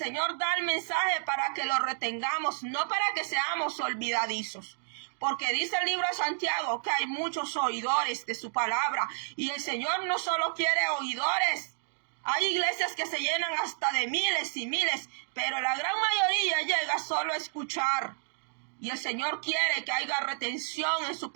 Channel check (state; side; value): silent; left; digital silence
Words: da el mensaje para que lo retengamos, no para que seamos olvidadizos. Porque dice el libro de Santiago que hay muchos oidores de su palabra. Y el Señor no solo quiere oidores. Hay iglesias que se llenan hasta de miles y miles, pero la gran mayoría llega solo a escuchar. Y el Señor quiere que haya retención en su